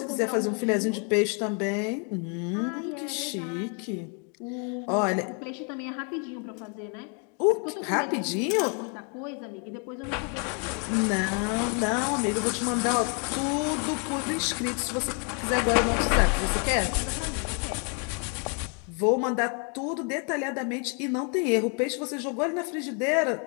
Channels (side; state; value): right; quieter; 38.3 dB